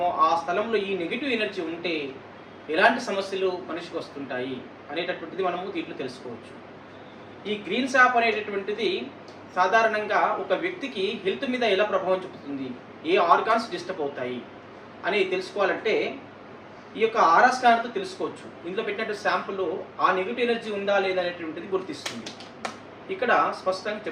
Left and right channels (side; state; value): both; identical; correlation 1.00